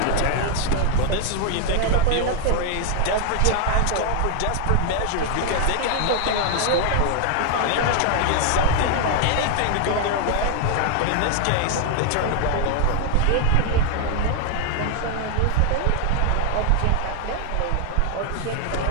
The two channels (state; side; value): different; both; correlation 0.00